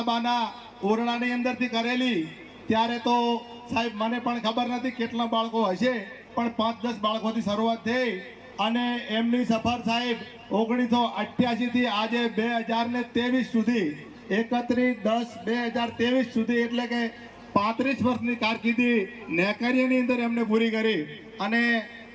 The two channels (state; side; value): identical; both; correlation 1.00